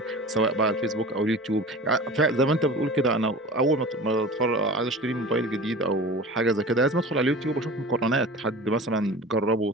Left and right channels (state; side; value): normal; both; correlation 0.37